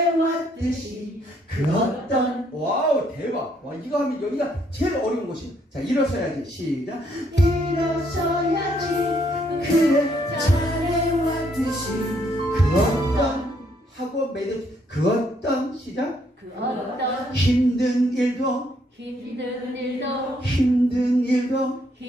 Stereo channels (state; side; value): normal; both; correlation 0.70